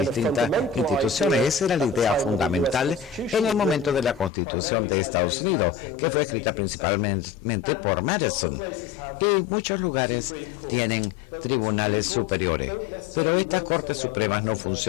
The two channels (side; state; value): right; drops out; at 4.3 s